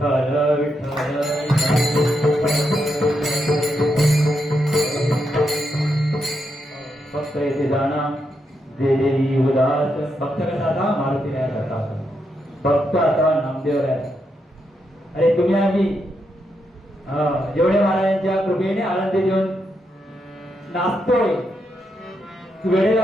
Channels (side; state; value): both; normal; correlation 0.82